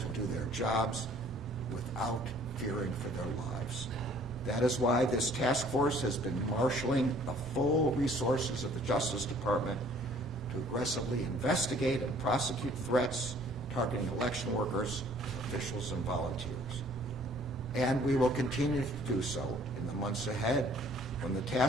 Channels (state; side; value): normal; both; correlation 0.56